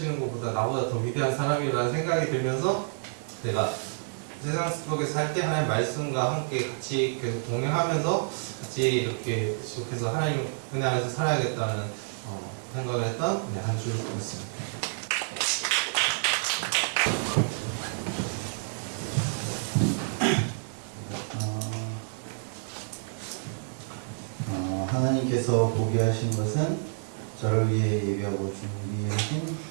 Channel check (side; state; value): left; silent; digital silence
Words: 것보다 나보다 더 위대한 사람이라는 생각이 들면서 내가 세상 속에서 살 때 하나님 말씀과 함께 같이 계속 동행하면서 같이 이렇게 계속해서 하나님 은혜 안에서 살아야겠다는 생각을 했던 한 주였습니다. 하나님께서 보게 하신 것은 저를 위해 예비하고 준비하신